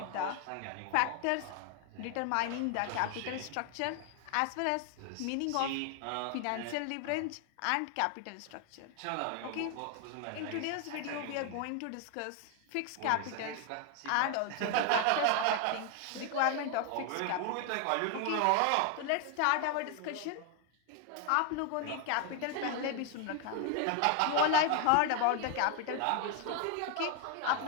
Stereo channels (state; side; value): different; both; correlation 0.01